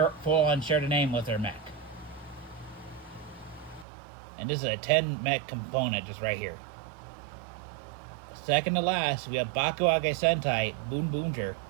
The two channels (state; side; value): drops out; left; at 3.9 s